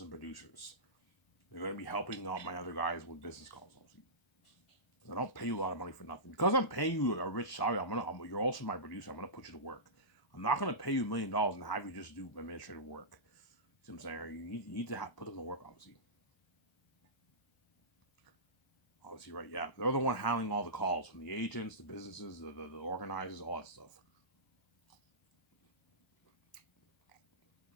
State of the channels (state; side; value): late; right; 1.0 ms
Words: producers. They're going to be helping out my other guys with business calls, obviously. I don't pay you a lot of money for nothing. Because I'm paying you a rich salary, you're also my producer. I'm going to put you to work. I'm not going to pay you $1 million and have you just do administrative work. See what I'm saying? You need to put them to work, obviously. Obviously, right? Yeah, they're the one handling all the calls from the agents, the businesses, the organizers, all that stuff.